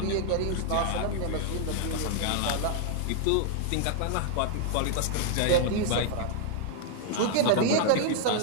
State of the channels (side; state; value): both; different; correlation 0.00